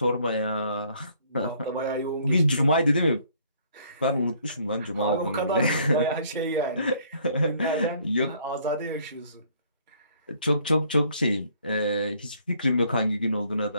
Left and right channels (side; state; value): both; inverted; correlation -0.62